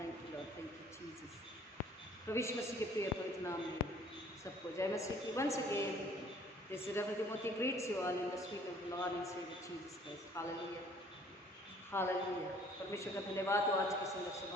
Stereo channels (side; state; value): both; normal; correlation 0.56